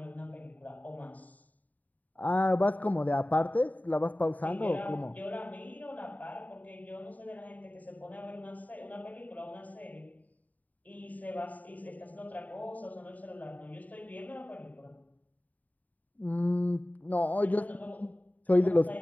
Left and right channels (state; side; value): late; right; 0.075 ms